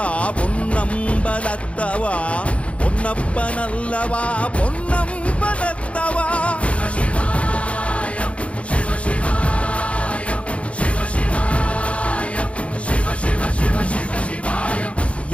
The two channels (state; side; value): late; right; 0.062 ms